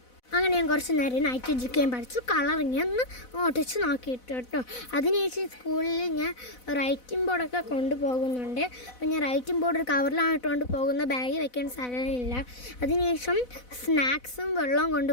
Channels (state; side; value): late; right; 4.0 ms